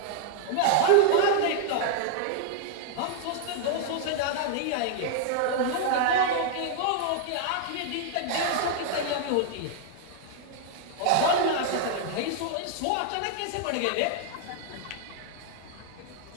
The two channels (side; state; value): both; different; correlation 0.00